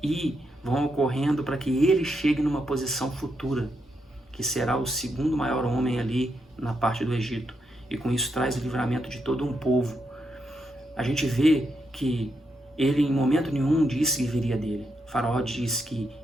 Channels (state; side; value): normal; both; correlation 0.82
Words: e vão ocorrendo para que ele chegue numa posição futura, que será o segundo maior homem ali na parte do Egito. E com isso traz o livramento de todo um povo. A gente vê que ele em momento nenhum disse que viria dele. O faraó diz que